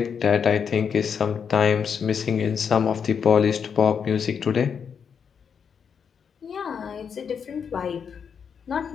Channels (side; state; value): right; quieter; 6.9 dB